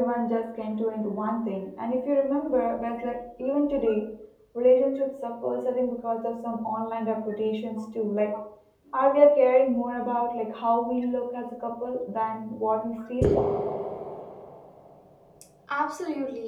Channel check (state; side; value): identical; both; correlation 1.00